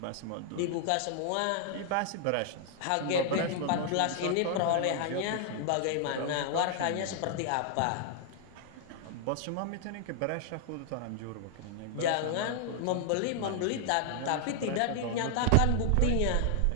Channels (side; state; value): both; different; correlation 0.00